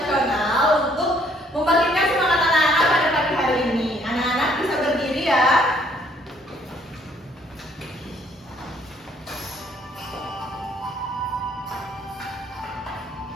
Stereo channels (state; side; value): normal; both; correlation 0.64